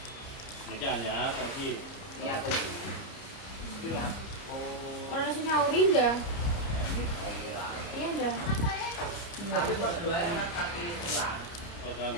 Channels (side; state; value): right; late; 30 ms